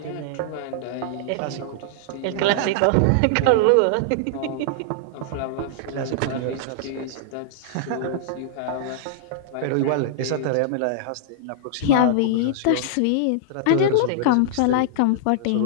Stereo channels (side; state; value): both; different; correlation -0.01